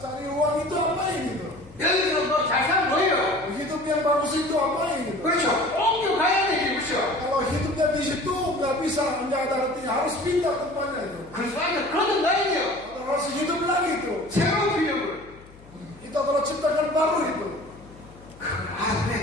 cari uang itu apa ini? 여기서 뭐잘 사는 거예요. Hidup yang bagus itu apa ini? 그렇죠. 옮겨가야 되지, 그렇죠. Kalau hidupnya di situ nggak bisa, nggak ada artinya, harus pindah tempatnya itu. 그리스도 안에 거듭나야 돼요. Harus hidup lagi itu. 새로운 필요를. Itu adalah ciptakan baru itu. 그걸 알아야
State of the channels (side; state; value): left; noise; hum, 23 dB below the sound